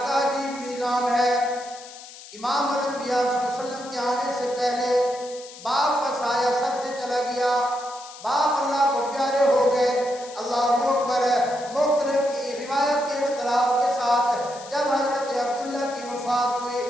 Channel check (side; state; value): left; noise; hiss, 17 dB below the sound